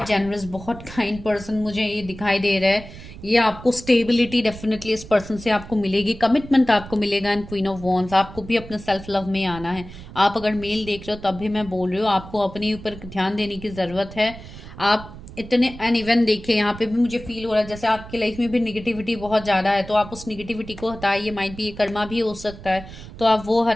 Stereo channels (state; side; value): noise; right; rumble, 15 dB below the sound